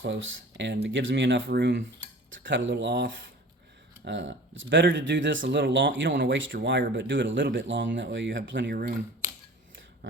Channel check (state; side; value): normal; both; correlation 0.43